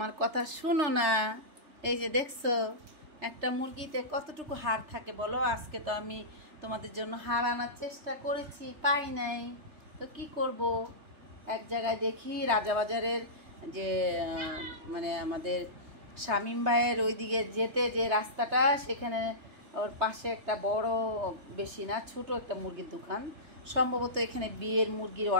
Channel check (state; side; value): late; left; 3.4 ms